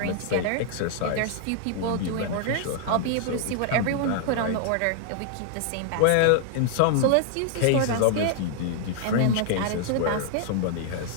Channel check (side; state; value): both; different; correlation 0.00